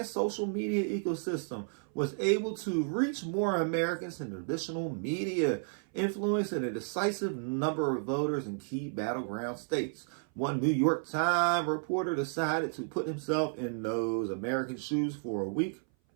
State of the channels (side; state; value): left; silent; 56 dB below the other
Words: social media ecosystem was able to reach more Americans than traditional media, influencing a decisive number of voters in key battleground states. One New York Times reporter decided to put himself in those American shoes for a week